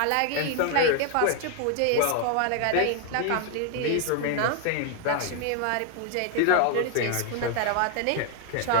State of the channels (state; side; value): different; both; correlation 0.00